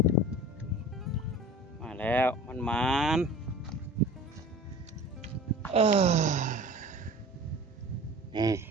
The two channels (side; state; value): both; normal; correlation 0.40